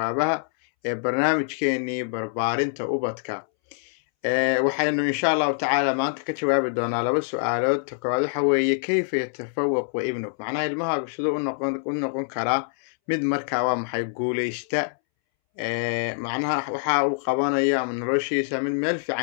برنامجكيني barbaarinta ubadka waxaynu insha allahu tacaala maanta ka jawaabi doonaa laba su-aalood. koowaad waxa weeye kayfa yatafawaqu ibnuk, macnaha ilmahaagu siduu u noqon karaa mid markaa waa maxay guuleysta, macnaha waxa uu qabanayo ama noloshiisa mid meel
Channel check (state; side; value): silent; right; 62 dB below the other